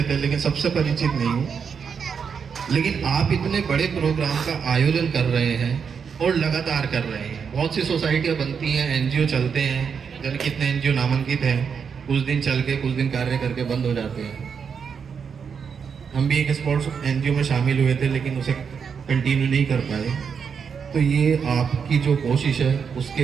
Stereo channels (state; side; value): quieter; left; 6.5 dB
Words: थे, लेकिन सबसे परिचित नहीं हूँ। लेकिन आप इतने बड़े प्रोग्राम का आयोजन कर रहे हैं और लगातार कर रहे हैं। बहुत सी सोसाइटियाँ बनती हैं, एनजीओ चलते हैं, जाने कितने एनजीओ नामांकित हैं, कुछ दिन चल के कुछ दिन कार्य करके बंद हो जाते हैं। हम भी एक स्पोर्ट्स एनजीओ में शामिल हुए थे, लेकिन उसे कंटिन्यू नहीं कर पाए। तो ये आपकी जो कोशिश है, उसके